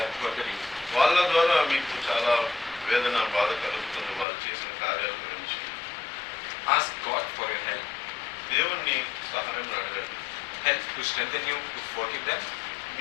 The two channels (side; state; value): right; drops out; at 4.2 s